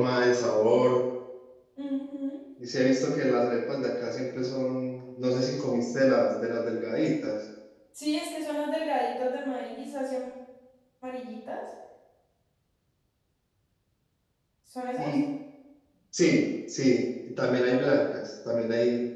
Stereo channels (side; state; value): both; identical; correlation 1.00